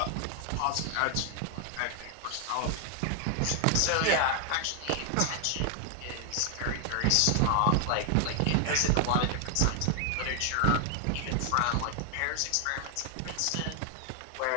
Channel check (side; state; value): both; different; correlation 0.00